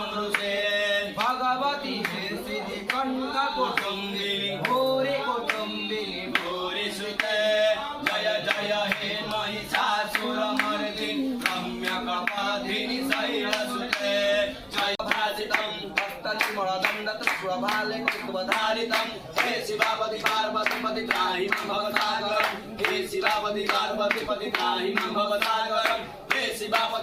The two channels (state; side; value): identical; both; correlation 1.00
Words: भगवती सिद्धि कंठ कुटुंबिनी भूरि कुटुंबिनी भूरि सुते जय जय हे महिषासुरमर्दिनि रम्यकपाधिनि शैलसुते जय भासितं हस्तनिमलदण्डतस्वभाले कुतुबधारितं हे शिवापति पार्वती पति त्राहि मां भवसागरं हे शिवापति पार्वती पति त्राहि मां भवसागरं हे